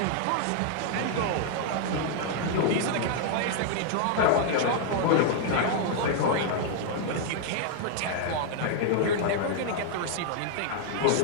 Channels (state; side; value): different; both; correlation 0.00